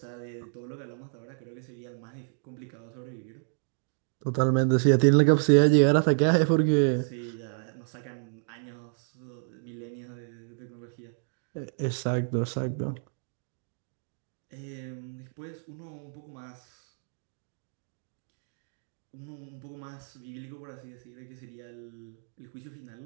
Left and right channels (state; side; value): silent; left; digital silence